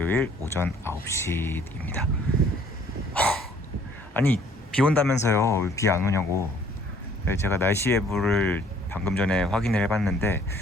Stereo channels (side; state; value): both; normal; correlation 0.59